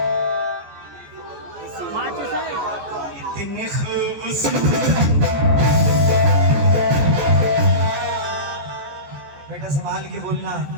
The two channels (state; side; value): late; left; 14 ms